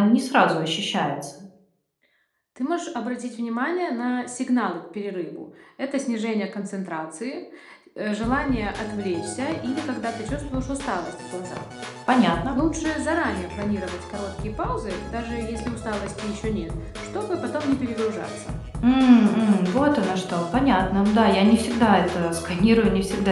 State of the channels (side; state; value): both; identical; correlation 1.00